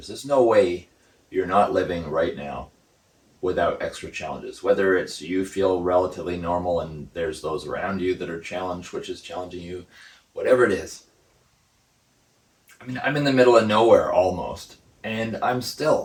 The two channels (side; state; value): both; identical; correlation 1.00